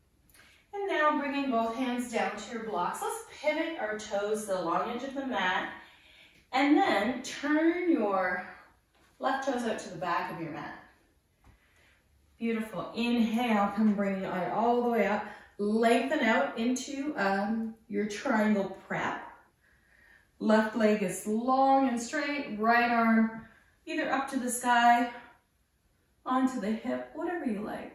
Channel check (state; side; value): identical; both; correlation 1.00